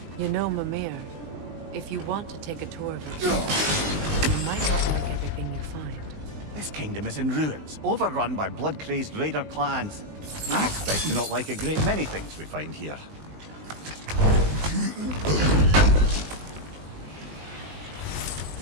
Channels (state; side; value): late; left; 20 ms